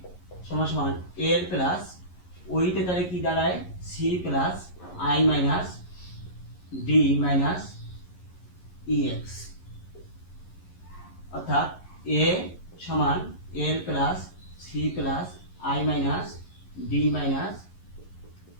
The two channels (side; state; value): right; late; 11 ms